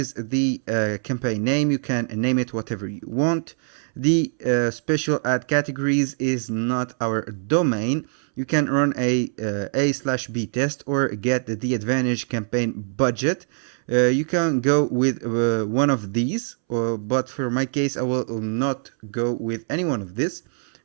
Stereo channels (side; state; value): left; silent; 63 dB below the other